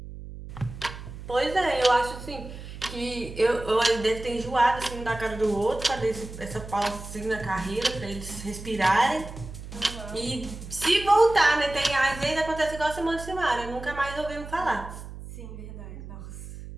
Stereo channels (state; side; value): noise; right; hum, 12 dB below the sound